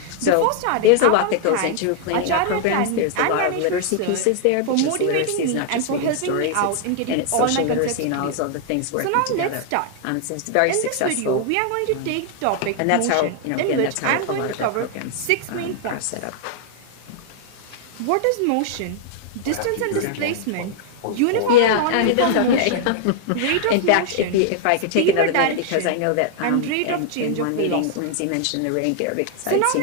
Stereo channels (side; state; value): both; different; correlation 0.00